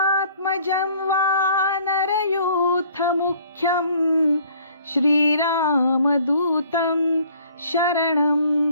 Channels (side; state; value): both; inverted; correlation -0.57